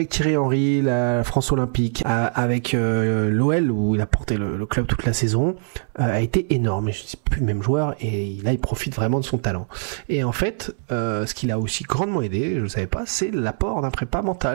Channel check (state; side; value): silent; left; 64 dB below the other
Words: Thierry Henry, la France Olympique, avec l'OL, où il a porté le club toute la saison, a été énorme. Et je ne suis plus le même joueur, et là, il profite vraiment de son talent. Et en fait, ce qui l'a aussi grandement aidé, je ne savais pas, c'est l'apport d'un prépa